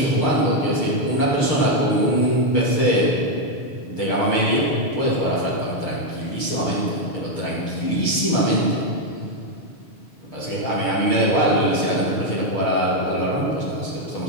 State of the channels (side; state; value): right; late; 6.6 ms